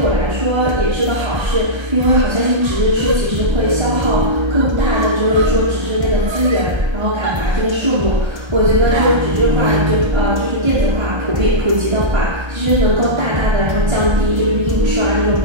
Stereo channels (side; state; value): left; late; 1.3 ms